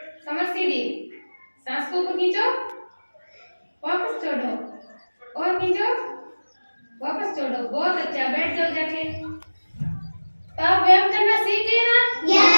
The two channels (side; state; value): both; inverted; correlation -1.00